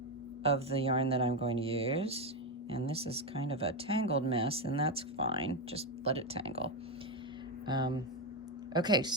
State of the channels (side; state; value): both; normal; correlation 0.08